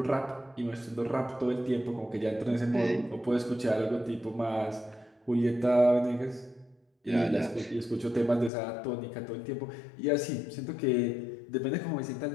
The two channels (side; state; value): right; drops out; at 8.5 s